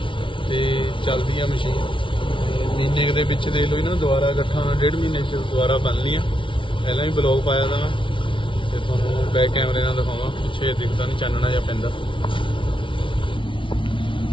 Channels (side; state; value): right; late; 0.25 ms